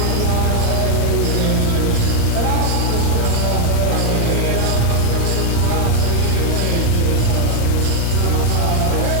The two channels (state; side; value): different; both; correlation 0.00